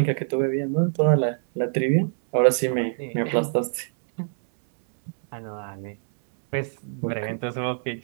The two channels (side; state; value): left; silent; 62 dB below the other